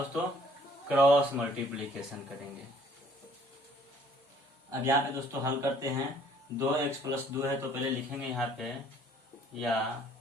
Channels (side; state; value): both; normal; correlation 0.58